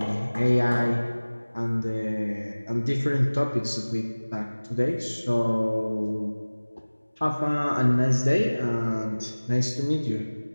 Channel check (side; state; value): both; inverted; correlation -1.00